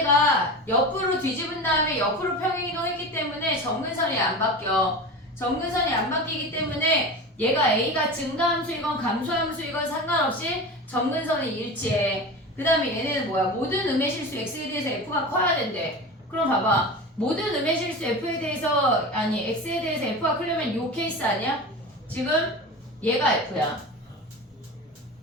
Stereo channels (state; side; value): normal; both; correlation 0.29